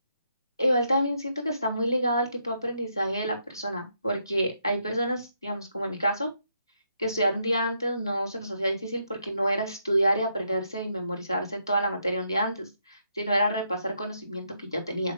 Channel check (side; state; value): both; inverted; correlation -0.77